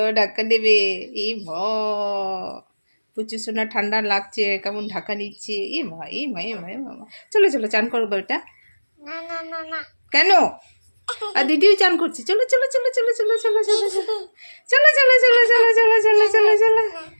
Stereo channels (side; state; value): both; inverted; correlation -1.00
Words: ঢাকা দেবে এই প্রচুর সোনা ঠান্ডা লাগছে কেমন ঢাকা নিচ্ছে এই ভাই মামা চলো চান করবো এটা না না না না কেন আর দিদিও চান করছে চলো চলো